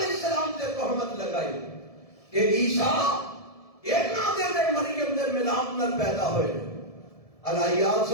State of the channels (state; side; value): late; right; 1.7 ms